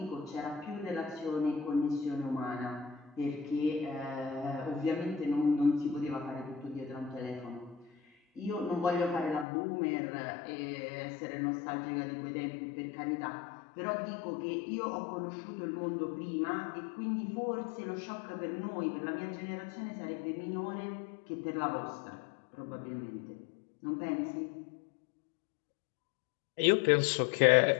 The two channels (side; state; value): right; drops out; at 9.5 s